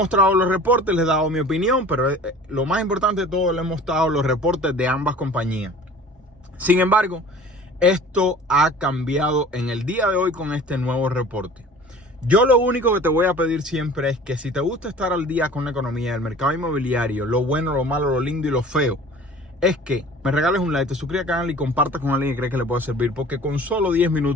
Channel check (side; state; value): both; normal; correlation 0.44